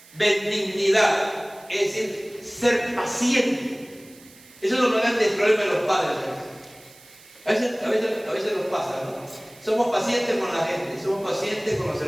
benignidad? Es decir, ser paciente. Eso es lo más grande del problema de los padres. A veces nos pasa, ¿no? Somos pacientes con la gente, somos pacientes con los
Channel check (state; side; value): noise; right; hiss, 24 dB below the sound